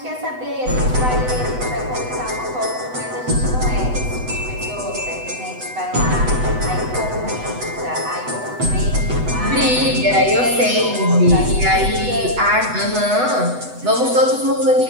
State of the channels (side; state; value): left; late; 8.0 ms